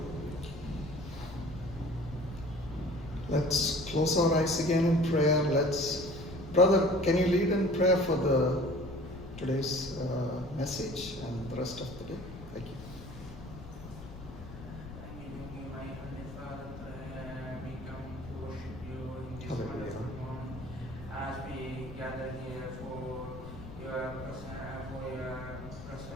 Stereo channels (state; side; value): noise; left; rumble, 13 dB below the sound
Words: Let's close our eyes again in prayer. Brother, can you lead in prayer for today's message and the rest of the day? Thank you. My Heavenly Father, we come to worship you in this Hallelujah. wonderful morning as we gather here for your